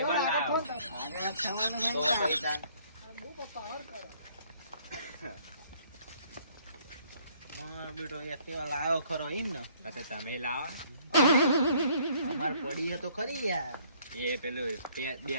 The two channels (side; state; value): both; inverted; correlation -0.61